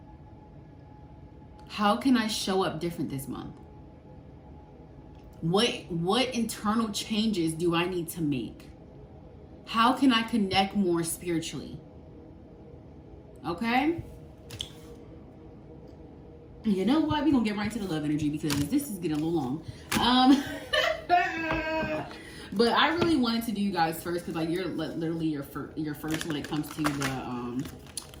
How can I show up different this month? What internal changes do I need to make? How can I connect more spiritually? Okay? You know what? We're gonna get right to the love energy, because this is getting a little long. But I really wanted to do you guys first, because like you're literally your first when it comes to the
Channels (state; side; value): identical; both; correlation 1.00